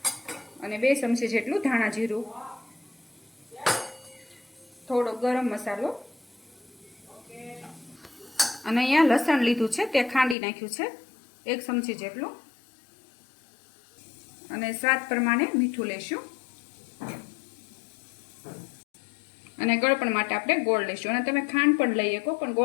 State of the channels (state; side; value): drops out; right; at 10.4 s